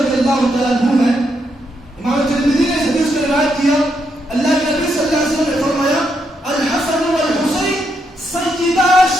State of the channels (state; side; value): normal; both; correlation 0.79